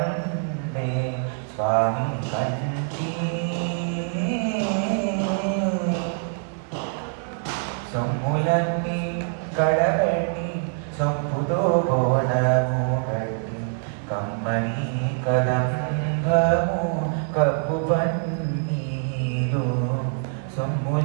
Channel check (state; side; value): silent; left; 62 dB below the other